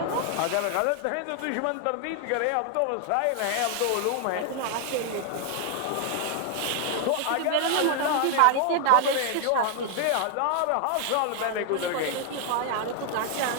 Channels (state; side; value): different; both; correlation 0.00